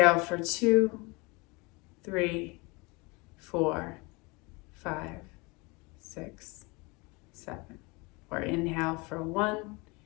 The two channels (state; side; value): quieter; right; 26.7 dB